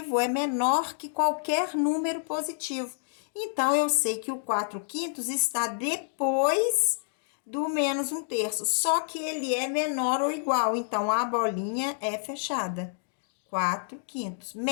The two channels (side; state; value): right; silent; digital silence